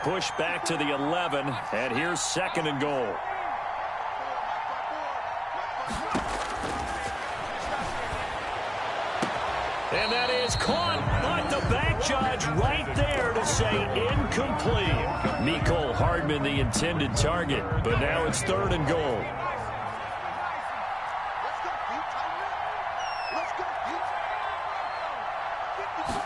pushed back to the 11, and here's 2nd and goal. And that is caught, but the back judge right there to say incomplete. Mecole Hardman the intended target, but now it's 3rd and goal.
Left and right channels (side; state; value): both; identical; correlation 1.00